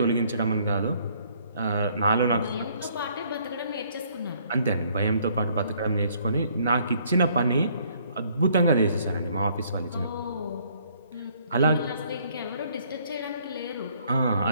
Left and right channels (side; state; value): both; inverted; correlation -0.64